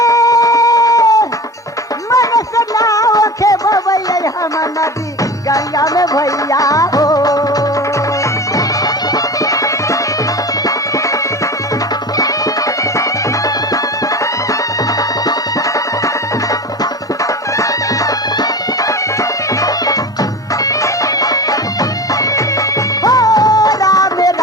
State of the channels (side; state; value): both; normal; correlation 0.32